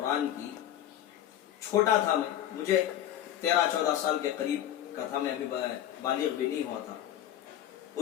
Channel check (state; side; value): quieter; right; 11.5 dB